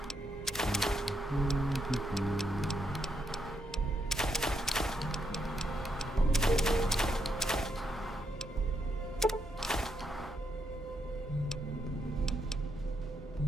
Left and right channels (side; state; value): both; normal; correlation 0.79